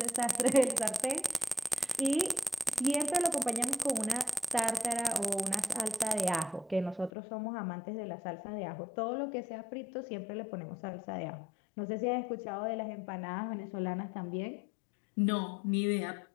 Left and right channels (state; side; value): drops out; right; at 7.1 s